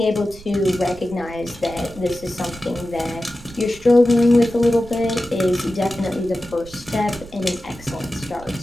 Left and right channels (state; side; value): noise; right; rumble, 19 dB below the sound